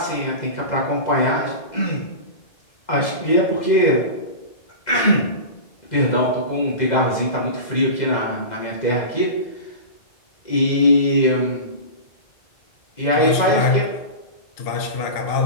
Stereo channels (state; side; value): late; right; 2.0 ms